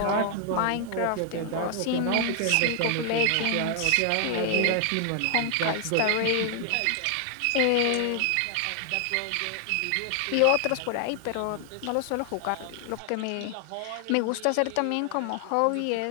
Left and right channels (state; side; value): different; both; correlation 0.00